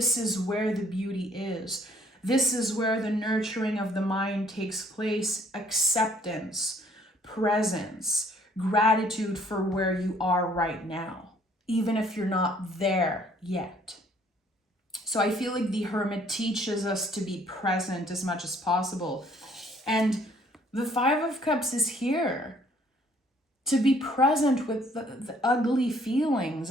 is where the beauty is. This is where the nurturing of the mind takes place. Acceptance, presence, gratitude for where you are right now, even if you're not there yet. So I feel like the Hermit teaches us to be present as much as possible. And the Five of Cups is here to be present with the ugly feelings.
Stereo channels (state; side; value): normal; both; correlation 0.61